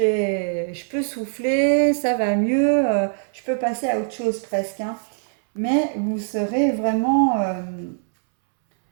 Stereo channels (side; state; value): left; silent; 64 dB below the other